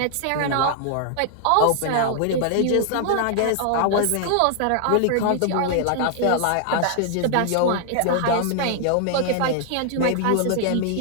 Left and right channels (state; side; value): different; both; correlation 0.00